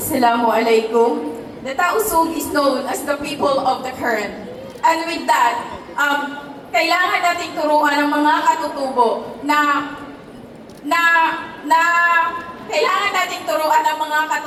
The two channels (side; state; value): both; identical; correlation 1.00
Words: The Tausug is known as the people of the current. And with that, kailangan nating turuan ng mga katutubo na kailangan nating turuan ng mga